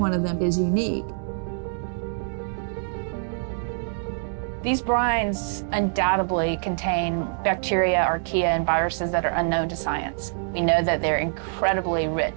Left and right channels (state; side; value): silent; left; 62 dB below the other